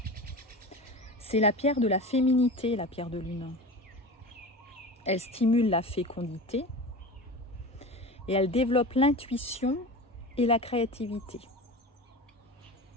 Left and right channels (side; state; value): both; normal; correlation 0.31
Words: C'est la pierre de la féminité, la pierre de lune. Elle stimule la fécondité et elle développe l'intuition et la créativité.